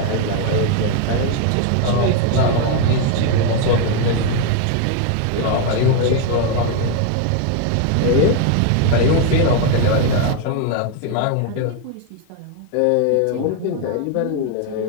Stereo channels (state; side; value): different; both; correlation 0.01